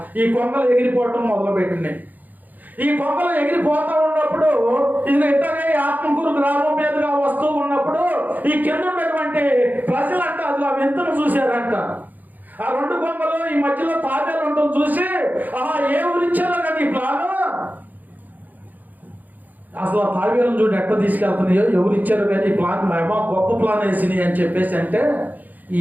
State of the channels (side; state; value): left; late; 0.083 ms